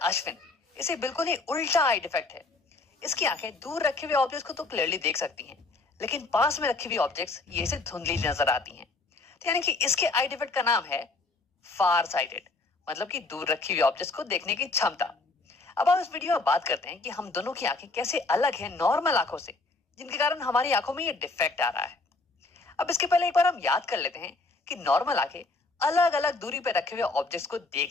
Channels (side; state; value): right; quieter; 3.5 dB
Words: इसे बिल्कुल ही उल्टा आई डिफेक्ट है। इसकी आंखें दूर रखे हुए ऑब्जेक्ट्स को तो क्लियरली देख सकती हैं, लेकिन पास में रखी हुई ऑब्जेक्ट्स ये इसे धुंधली नजर आती हैं। तो यानी कि इसके आई डिफेक्ट का नाम है फार साइटेड, मतलब कि दूर रखी हुई ऑब्जेक्ट्स को देखने की क्षमता। अब हम इस वीडियो में बात करते हैं कि हम दोनों की आंखें कैसे अलग हैं नॉर्मल आंखों से, जिनके कारण हमारी आंखों में ये डिफेक्ट आ रहा है। अब इसके पहले एक बार हम याद कर लेते हैं कि नॉर्मल आंखें अलग अलग दूरी पर रखे हुए ऑब्जेक्ट्स को